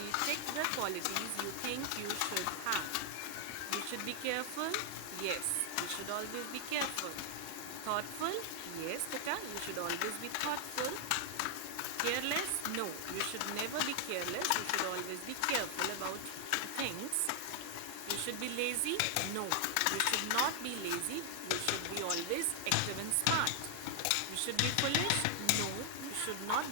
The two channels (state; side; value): different; both; correlation 0.00